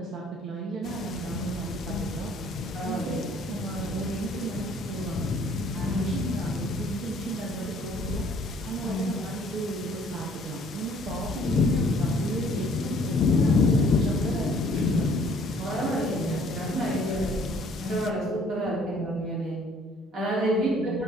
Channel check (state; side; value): normal; both; correlation 0.58